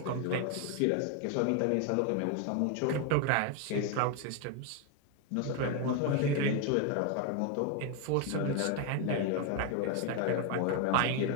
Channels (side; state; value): both; different; correlation 0.01